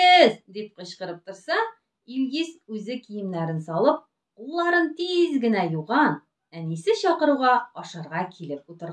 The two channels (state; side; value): identical; both; correlation 1.00